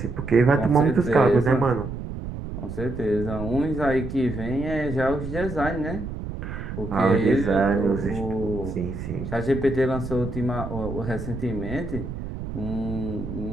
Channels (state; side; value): noise; right; rumble, 7 dB below the sound